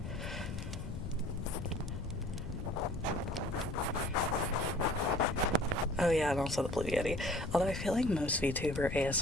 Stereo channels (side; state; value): left; noise; rumble, 6 dB below the sound